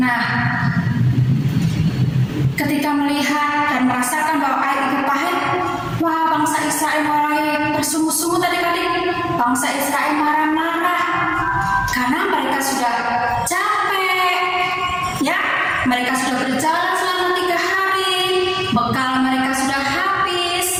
ketika melihat dan merasakan bahwa air itu pahit, wah, bangsa Israel mulai bersungut-sungut adik-adik. Bangsa Israel marah-marah karena mereka sudah capek, ya. Mereka sudah berjalan selama 3 hari, bekal mereka sudah habis,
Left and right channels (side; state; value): both; identical; correlation 1.00